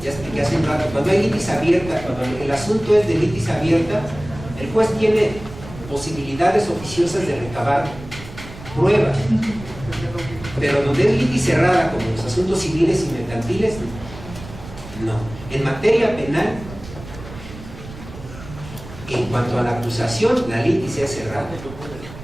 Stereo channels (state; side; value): noise; right; rumble, 14 dB below the sound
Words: Ya expliqué hace un rato, cuando hay litis abierta, cuando el asunto es de litis abierta, el juez tiene posibilidades oficiosas de recabar pruebas. Pero donde es litis cerrada, como los asuntos civiles y mercantiles, no. En materia penal, en cuanto a la acusación, la litis es cerrada.